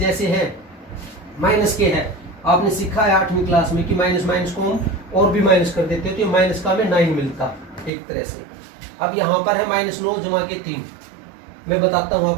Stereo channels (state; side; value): drops out; left; at 7.9 s